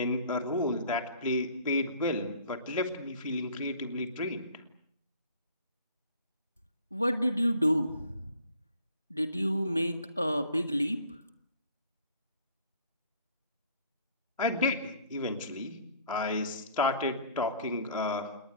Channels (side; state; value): both; inverted; correlation -0.54